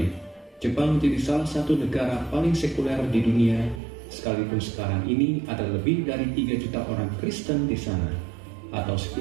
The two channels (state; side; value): drops out; left; at 3.8 s